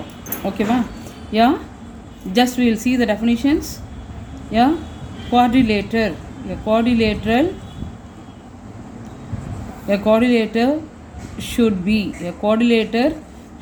ஓகேவா? Yeah, just we will see the definitions. Yeah, quadrilater. A quadrilater should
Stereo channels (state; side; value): identical; both; correlation 1.00